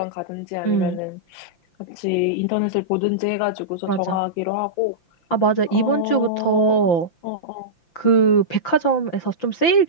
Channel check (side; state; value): right; late; 5.8 ms